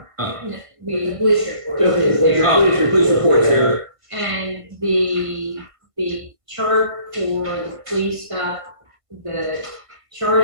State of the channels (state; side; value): late; left; 1.6 ms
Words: Oh. No, the police report Just is the there. Oh, police report's here. And the chart for the police stuff, the